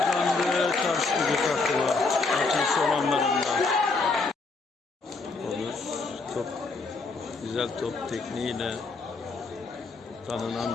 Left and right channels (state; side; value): quieter; right; 3.9 dB